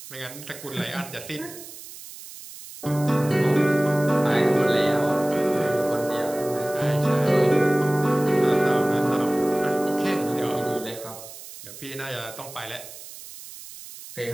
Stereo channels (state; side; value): noise; right; hiss, 15 dB below the sound